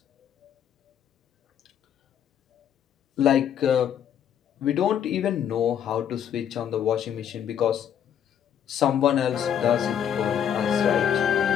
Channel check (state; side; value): quieter; right; 9.2 dB